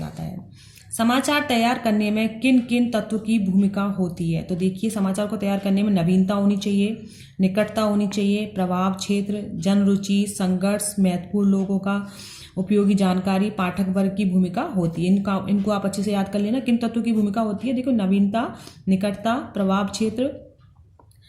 है। समाचार तैयार करने में किन किन तत्वों की भूमिका होती है? तो देखिए, समाचार को तैयार करने में नवीनता होनी चाहिए, निकटता होनी चाहिए, प्रभाव क्षेत्र, जन रुचि, संघर्ष, महत्वपूर्ण लोगों का उपयोगी जानकारी, पाठक वर्ग की भूमिका होती है। इनको आप अच्छे से याद कर लेना। किन तत्वों की भूमिका होती है? देखो, नवीनता, निकटता, प्रभाव क्षेत्र,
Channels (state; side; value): identical; both; correlation 1.00